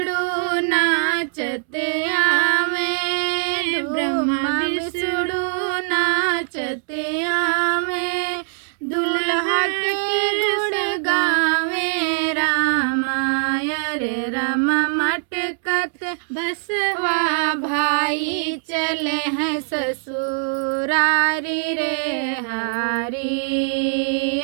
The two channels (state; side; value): silent; left; 64 dB below the other